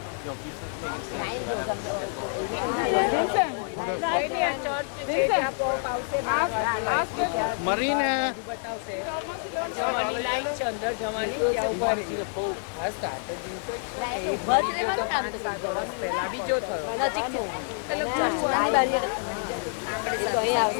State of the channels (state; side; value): silent; right; 60 dB below the other